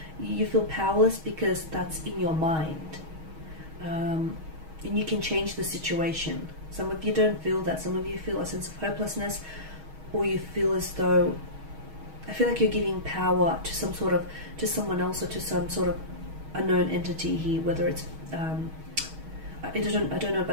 You feel powerless because that's in your mind. And you can change the situation. Some of you don't feel that. Some of you feel a sense of hopelessness, or you feel as though, I feel like you're giving power to to someone else, or to some sort of unknown entity here, whether it's, I don't know,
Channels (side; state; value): left; late; 6.3 ms